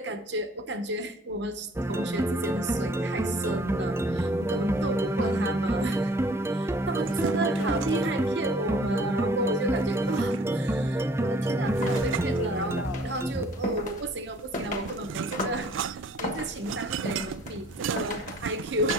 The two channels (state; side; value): normal; both; correlation 0.55